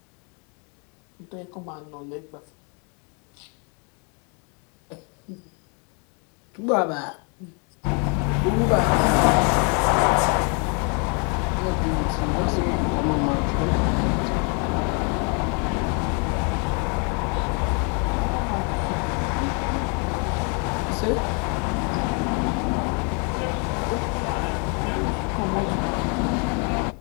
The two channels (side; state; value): right; quieter; 36.1 dB